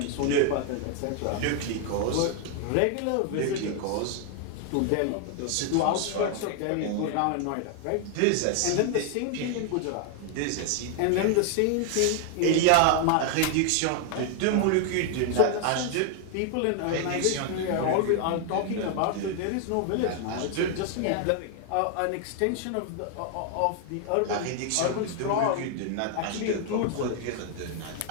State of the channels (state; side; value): different; both; correlation 0.00